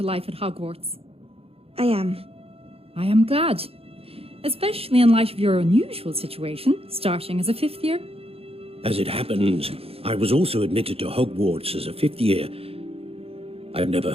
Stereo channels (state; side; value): late; left; 0.28 ms